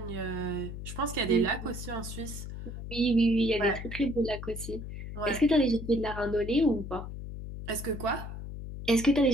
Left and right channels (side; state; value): left; noise; hum, 9 dB below the sound